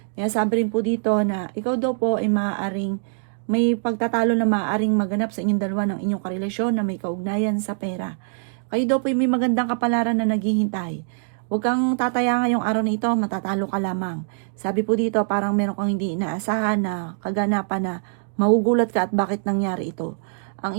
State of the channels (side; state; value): left; silent; digital silence